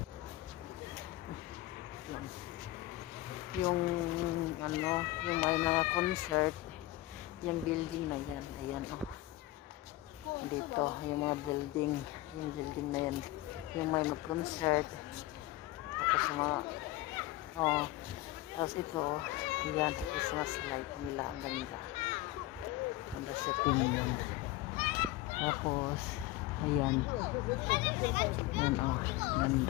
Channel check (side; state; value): right; quieter; 17.4 dB